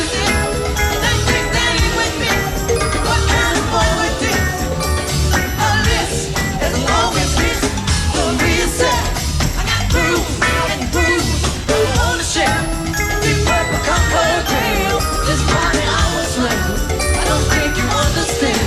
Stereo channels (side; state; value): both; identical; correlation 1.00